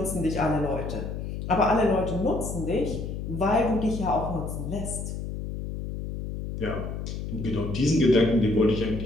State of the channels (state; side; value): noise; left; hum, 6 dB below the sound